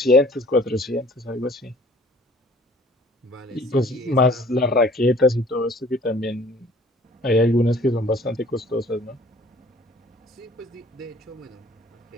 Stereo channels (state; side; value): normal; both; correlation 0.53